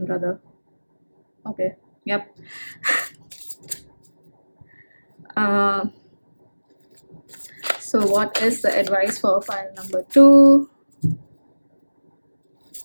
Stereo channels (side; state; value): both; inverted; correlation -1.00